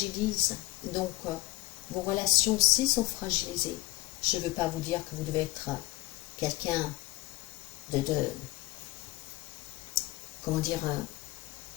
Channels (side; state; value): right; quieter; 19.1 dB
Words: Donc, vos relations aussi sont fragilisées. Je ne veux pas vous dire que vous devez être quelqu'un comment dire,